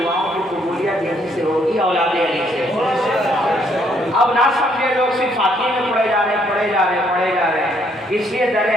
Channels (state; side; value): normal; both; correlation 0.69